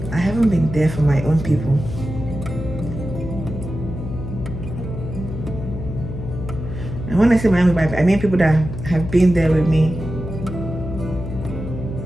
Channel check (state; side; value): noise; left; hum, 7 dB below the sound